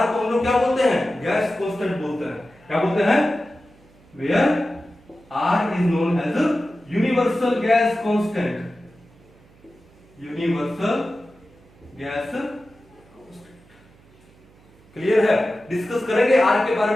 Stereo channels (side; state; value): right; noise; hum, 28 dB below the sound